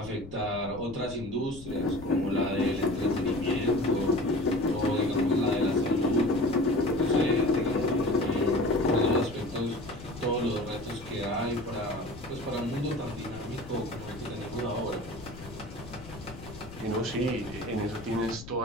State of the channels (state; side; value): noise; left; rumble, 15 dB below the sound